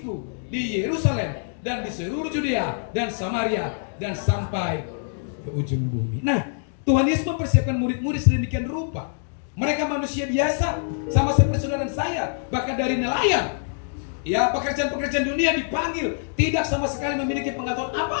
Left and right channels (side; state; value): right; silent; digital silence